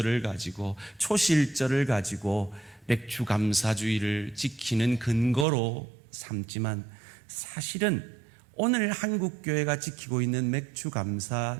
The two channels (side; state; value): left; drops out; at 5.5 s